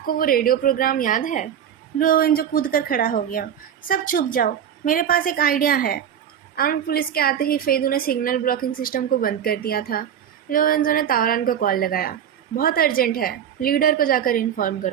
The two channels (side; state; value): left; quieter; 9.2 dB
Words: वो रेडियो प्रोग्राम याद है? लुओवेन जो कूद कर खड़ा हो गया। सब चुप जाओ, मेरे पास एक आइडिया है। आर्म्ड पुलिस के आते ही फेदू ने सिग्नल ब्लॉकिंग सिस्टम को बंद कर दिया था। लोरेंजो ने तावरान को कॉल लगाया। बहुत अर्जेंट है। लीडर को जाकर इन्फॉर्म